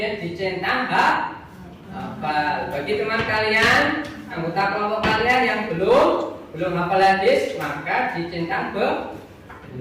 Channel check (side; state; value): both; identical; correlation 1.00